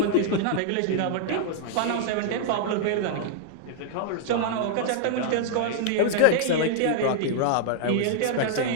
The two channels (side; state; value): both; different; correlation -0.01